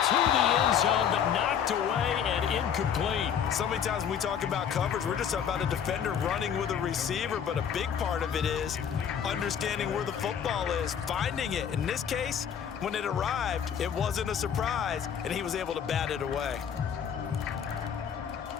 To the end zone, but knocked away and incomplete. So many times when we talk about coverage, we're just about a defender running with a receiver, but a big part of it is understanding where the football is, finding it. In this case, when it arrived, it wasn't a surprise, and he was able to bat it away.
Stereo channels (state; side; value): quieter; right; 8.2 dB